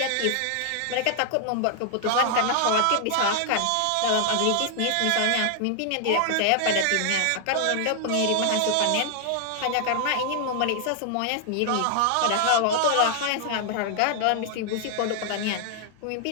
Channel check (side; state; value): both; different; correlation 0.00